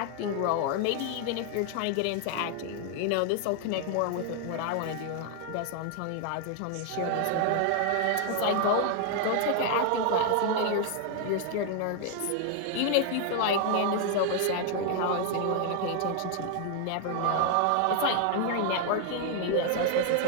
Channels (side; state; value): both; different; correlation 0.00